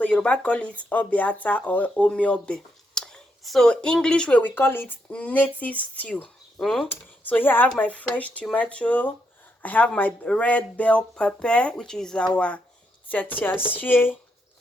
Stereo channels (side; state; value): both; normal; correlation 0.79